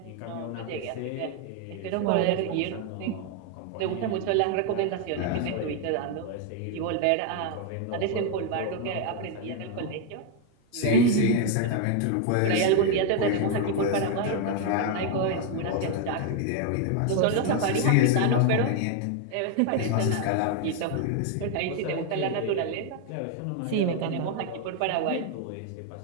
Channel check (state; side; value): different; both; correlation 0.00